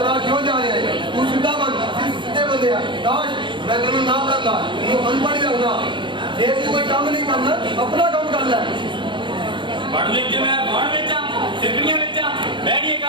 ਰਾਹ ਕਿਉਂ ਜਾ ਰਿਹਾ ਹੈ ਤੂੰ ਸਿੱਧਾ ਬਣ ਸਿੱਧੇ ਬੰਦੇ ਆ ਕਾਸ਼ ਮੈਂ ਤੈਨੂੰ ਨਾ ਕਰਦਾ ਤੈਨੂੰ ਅਨਪੜ੍ਹ ਰੱਖਦਾ ਜੇ ਤੂੰ ਕੋਈ ਕੰਮ ਨਹੀਂ ਕਰਨਾ ਆਪਣਾ ਕੰਮ ਕਰ ਲੈ पढ़ लिख के मैं बाढ़ बेचा सिगड़ियां बेचा मैं नहीं ये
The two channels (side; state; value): left; late; 0.23 ms